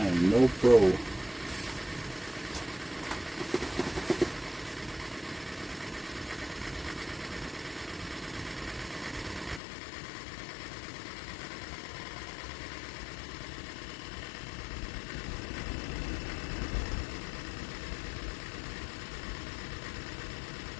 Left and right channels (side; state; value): right; drops out; at 9.6 s